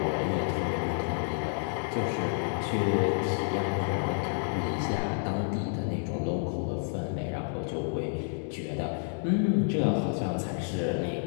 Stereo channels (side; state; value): right; silent; digital silence